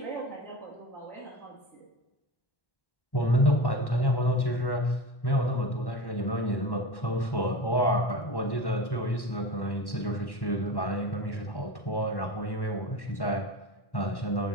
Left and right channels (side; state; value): right; late; 1.1 ms